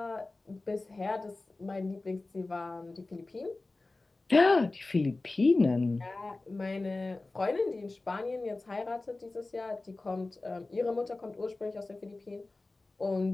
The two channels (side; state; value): right; quieter; 3.2 dB